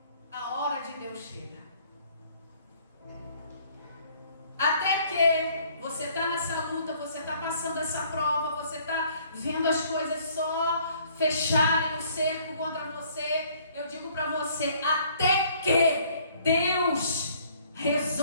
a hora de Deus chega. Até que você está nessa luta, você está passando essa prova, você está vendo as coisas só fecharem o cerco contra você. Eu digo para você, até que Deus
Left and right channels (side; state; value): both; inverted; correlation -0.60